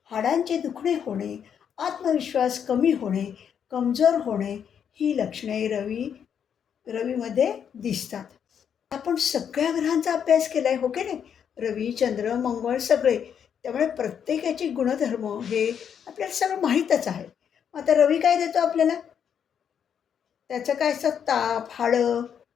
हाडांचे दुखणे होणे, आत्मविश्वास कमी होणे, कमजोर होणे ही लक्षणे रवीमध्ये दिसतात. आपण सगळ्या ग्रहांचा अभ्यास केला आहे, हो की नाही? रवी, चंद्र, मंगळ सगळे. त्यामुळे प्रत्येकाचे गुणधर्म हे आपल्याला सगळं माहीतच आहे. मग आता रवी काय देतो आपल्याला? त्याचं काय असतं? ताप, हाडं,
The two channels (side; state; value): right; quieter; 8.1 dB